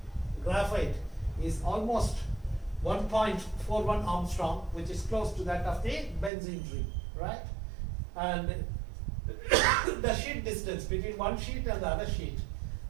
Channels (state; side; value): drops out; left; at 6.3 s